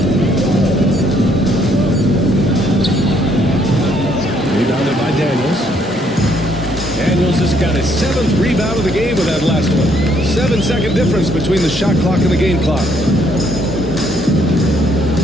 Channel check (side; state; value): both; normal; correlation 0.68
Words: Rebounded by Daniels. Daniels has got his 7th rebound of the game with that last one. 7-second difference between the shot clock and the game clock.